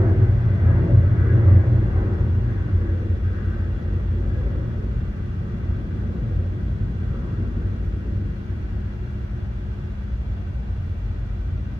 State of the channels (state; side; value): normal; both; correlation 0.98